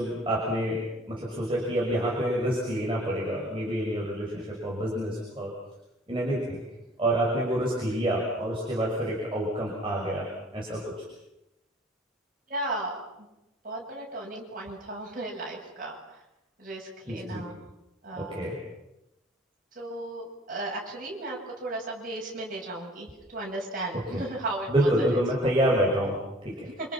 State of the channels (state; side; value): normal; both; correlation 0.51